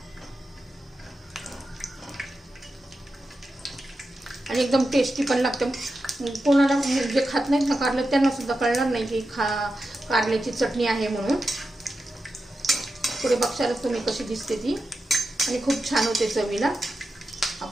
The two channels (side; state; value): both; normal; correlation 0.90